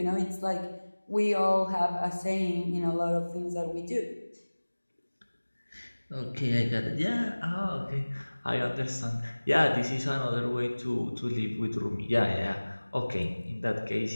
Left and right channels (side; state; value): both; inverted; correlation -1.00